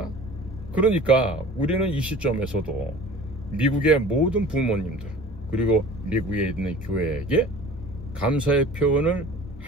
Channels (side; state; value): both; normal; correlation 0.43